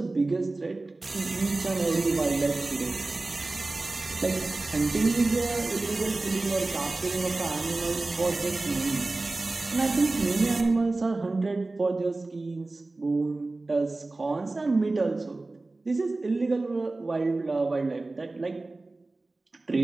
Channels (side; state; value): left; quieter; 3.2 dB